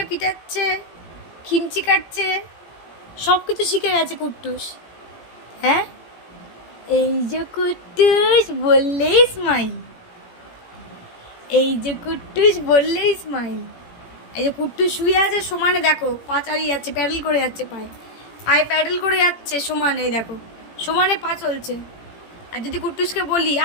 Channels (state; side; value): late; right; 17 ms